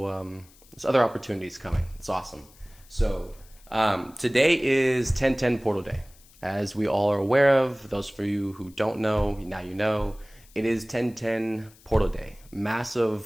there's other opportunities coming. It's awesome. So today is 10/10 Portal Day, as we all are aware of. Those for you who don't know, now you know. It is 10/10 Portal Day,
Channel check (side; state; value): left; noise; hiss, 26 dB below the sound